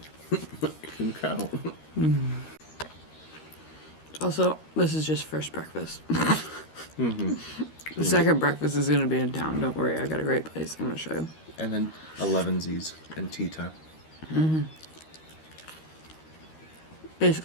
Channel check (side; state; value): right; late; 13 ms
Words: You can count. Also, this is just first breakfast. The second breakfast is gonna be in town. Don't worry, I got a great place. I'm gonna show you. And then 11sies and tea time.